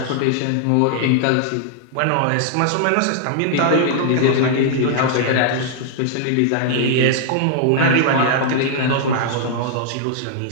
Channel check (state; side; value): different; both; correlation -0.01